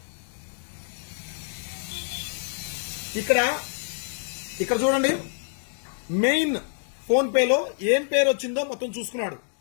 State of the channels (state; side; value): silent; right; digital silence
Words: ఇక్కడ చూడండి, మెయిన్ ఫోన్ పేలో ఏం పేరు వచ్చిందో మొత్తం చూసుకున్నాడు.